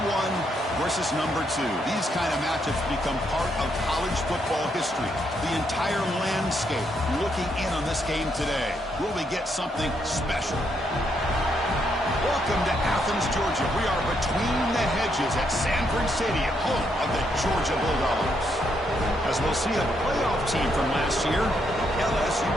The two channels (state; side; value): normal; both; correlation 0.76